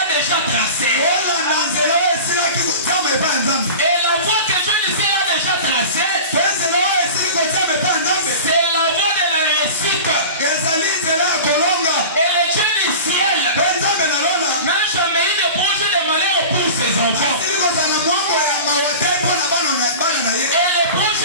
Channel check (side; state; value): both; inverted; correlation -0.34